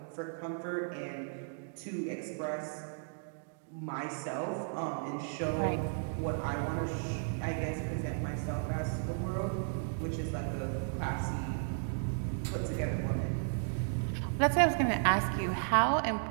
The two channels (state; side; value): silent; left; digital silence